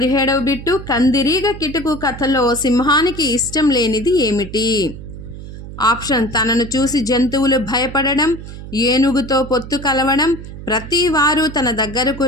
బిట్టు కందిరీగ కిటుకు కథలో సింహానికి ఇష్టం లేనిది ఏమిటి? ఆప్షన్ తనను చూసి జంతువులు భయపడడం, ఏనుగుతో పొత్తు కలవడం, ప్రతి వారు తన దగ్గరకు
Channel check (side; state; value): right; noise; hum, 12 dB below the sound